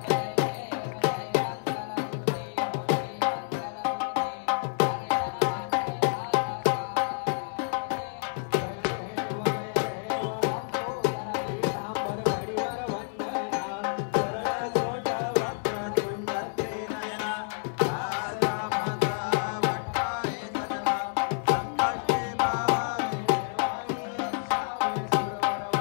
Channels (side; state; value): right; silent; 59 dB below the other